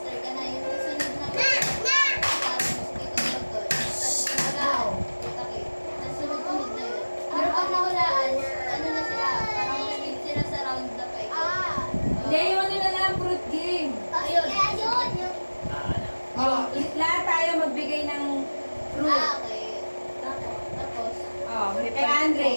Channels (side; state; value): both; inverted; correlation -1.00